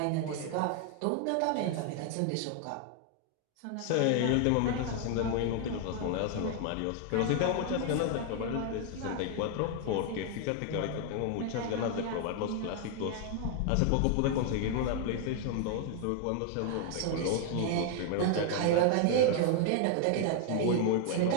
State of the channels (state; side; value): different; both; correlation 0.00